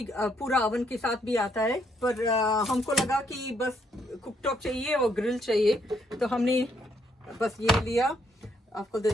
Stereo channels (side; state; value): both; normal; correlation 0.72